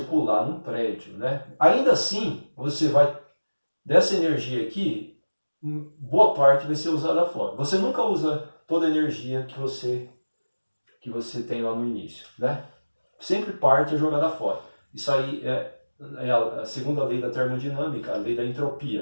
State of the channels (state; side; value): inverted; both; correlation -1.00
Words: num prédio, né? Ainda assim, você vai dessa energia aqui, boa parte vai ser usada fora. Você nunca usa toda a energia que você tem lá no início, né? Sempre parte é jogada fora. Isso aí é a segunda lei da termodinâmica, a lei da